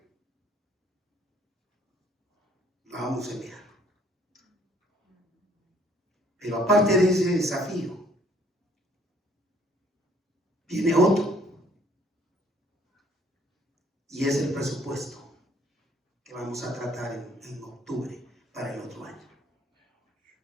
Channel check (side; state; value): both; normal; correlation 0.62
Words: la vamos a enviar. Pero aparte de ese desafío, viene otro, y es el presupuesto que vamos a tratar en octubre para el otro año.